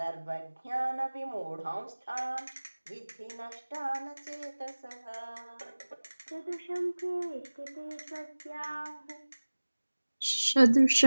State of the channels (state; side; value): inverted; both; correlation -1.00